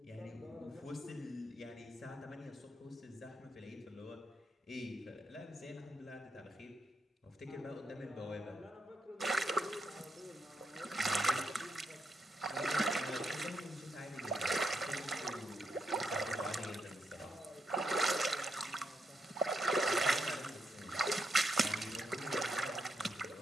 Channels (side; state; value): both; normal; correlation 0.81